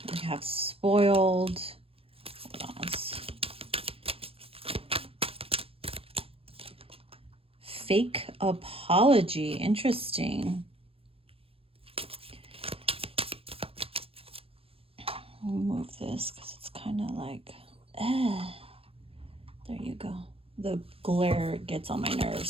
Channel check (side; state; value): left; late; 0.28 ms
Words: We have spoiled. Hold on. Fake apology. Interesting. I'll move this because it's kind of like, there you go. The glare gets on my